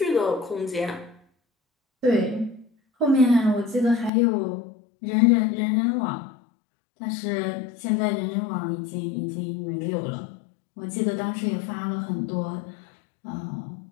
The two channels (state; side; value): drops out; right; at 4.1 s